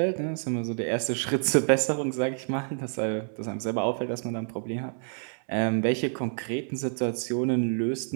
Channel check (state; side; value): silent; left; 59 dB below the other